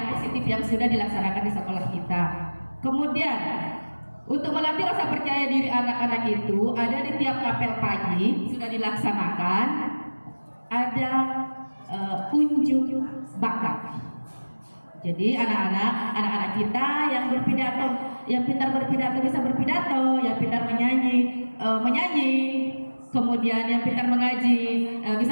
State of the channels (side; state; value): both; inverted; correlation -1.00